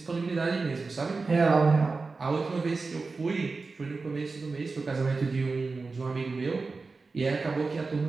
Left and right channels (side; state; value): left; quieter; 4.0 dB